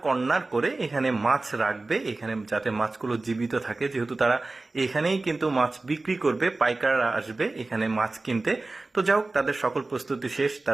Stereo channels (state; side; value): quieter; left; 3.3 dB